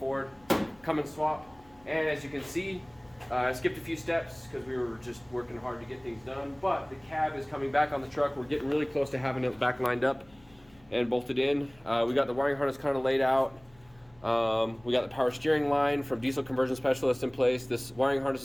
Cummins swap. And as you can see, I skipped a few steps because we were just working hard to get things done. But the cab is coming back on the truck. We're getting really close to having it back lined up and bolted in. We got the wiring harness kind of laid out. We got the power steering line from Diesel Conversion Specialist in place. This wiring harness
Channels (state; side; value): noise; left; hum, 29 dB below the sound